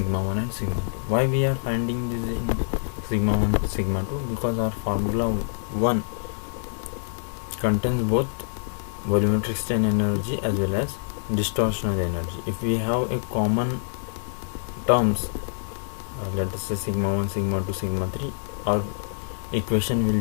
1 and sigma 2. Why we are finding this in sigma 1 sigma 2? Because our formula 1 contains both volumetric strain energy as well as distortional energy. If we have a common terms, let us say sigma 1 sigma 2 sigma 3, our equation will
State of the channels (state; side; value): silent; right; digital silence